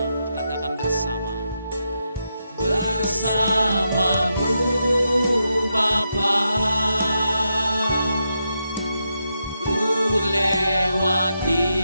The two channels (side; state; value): both; inverted; correlation -0.84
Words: katakan bersama. Bersamamu Bapa, ku lewati